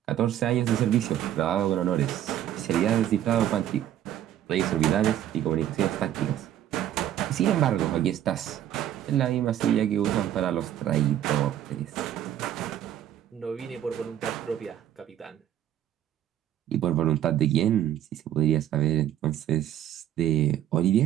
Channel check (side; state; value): left; quieter; 11.4 dB